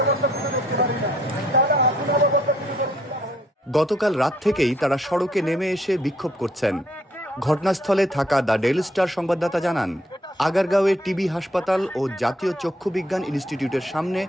গতকাল রাত থেকেই তারা সড়কে নেমে এসে বিক্ষোভ করছেন। ঘটনাস্থলে থাকা দ্য ডেইলি স্টার সংবাদদাতা জানান, আগারগাঁওয়ে টিবি হাসপাতাল ও জাতীয় চক্ষু বিজ্ঞান ইনস্টিটিউটের সামনে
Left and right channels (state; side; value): normal; both; correlation 0.67